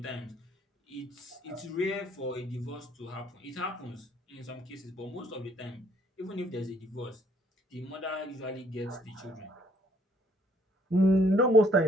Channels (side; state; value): both; normal; correlation 0.64